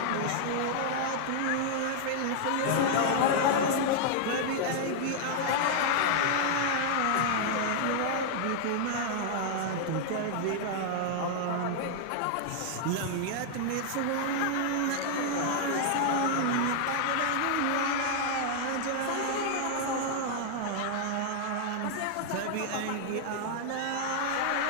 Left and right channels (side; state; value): both; different; correlation 0.00